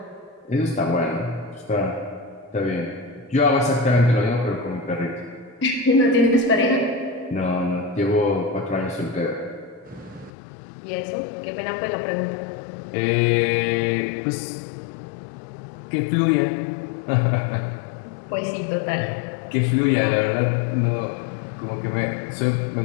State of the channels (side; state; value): right; drops out; at 10.3 s